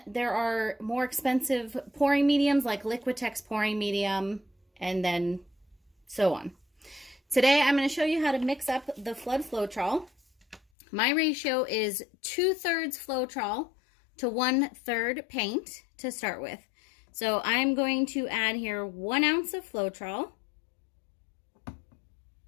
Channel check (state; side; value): drops out; right; at 10.6 s